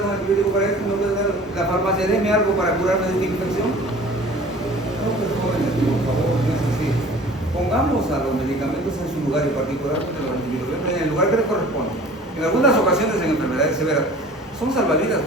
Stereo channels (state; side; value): normal; both; correlation 0.46